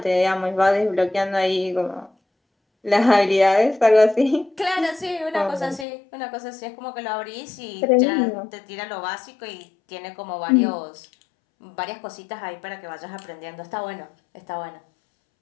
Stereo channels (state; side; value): drops out; right; at 5.9 s